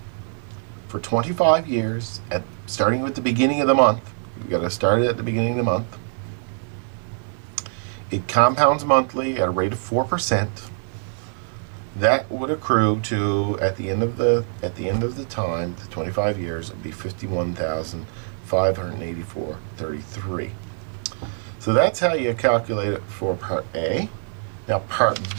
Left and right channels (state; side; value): silent; left; 63 dB below the other